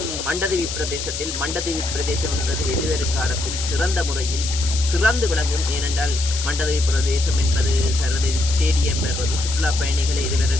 மண்டதீவு பிரதேசம் என்பது எதிர்வரும் காலத்தில் சிறந்த முறையில் சிறந்து விளங்கும். ஏனென்றால் மண்டதீவு பிரதேசம் என்பது சர்வதேச ஸ்டேடியம் என்பது சுற்றுலா பயணிகளை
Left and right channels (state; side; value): noise; left; hiss, 6 dB below the sound